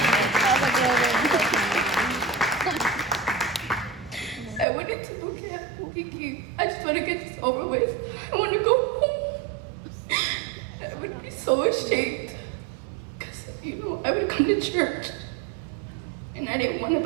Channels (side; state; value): left; drops out; at 4.7 s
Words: I went into boot camp thinking, I just want to get this over with. I want to go home. I would be so ashamed because, I would come to church and I didn't want to